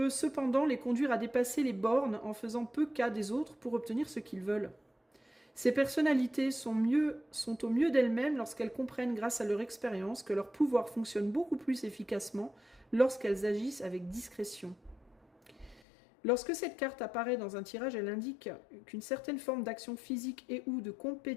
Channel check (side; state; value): right; drops out; at 15.8 s